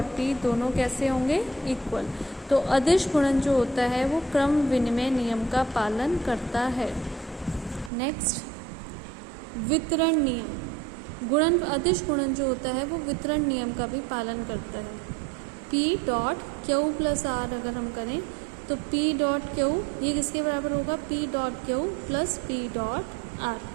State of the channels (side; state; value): left; drops out; at 7.9 s